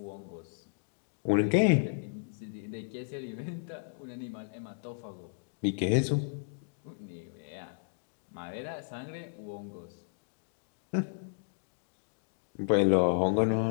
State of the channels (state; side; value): silent; right; digital silence